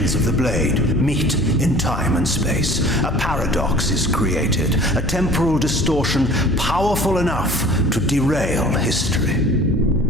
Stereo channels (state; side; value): noise; left; hum, 7 dB below the sound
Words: of the blade meet in time and space. A paradox is created, a temporal distortion powerful enough to derail history.